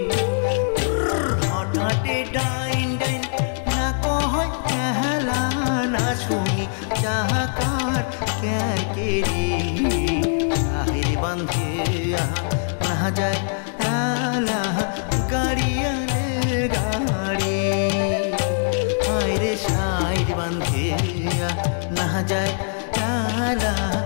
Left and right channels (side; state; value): right; silent; digital silence